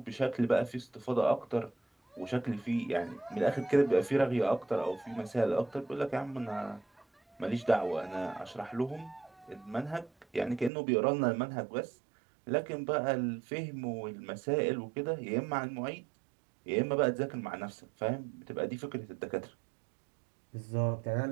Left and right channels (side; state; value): left; drops out; at 10.7 s